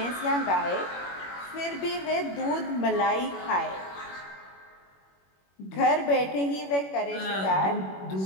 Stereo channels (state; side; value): late; right; 21 ms